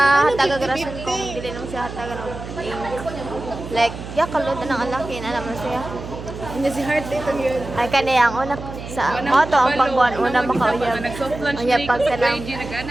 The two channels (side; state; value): right; noise; hum, 10 dB below the sound